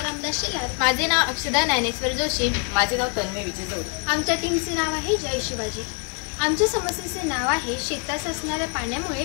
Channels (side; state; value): right; quieter; 37.8 dB